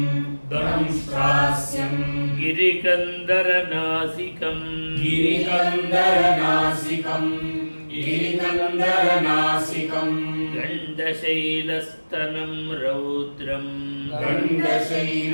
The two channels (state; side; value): inverted; both; correlation -1.00